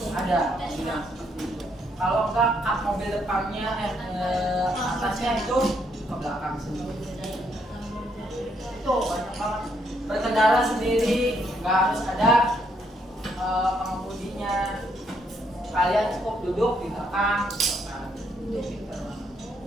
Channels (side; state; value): both; normal; correlation 0.73